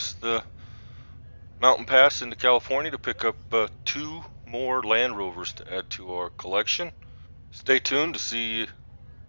the mountain pass into California to pick up 2 more Land Rovers to add to our collection. Stay tuned to see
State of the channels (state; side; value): inverted; both; correlation -1.00